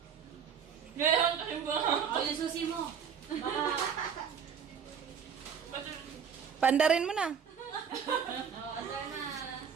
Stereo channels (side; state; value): left; quieter; 7.2 dB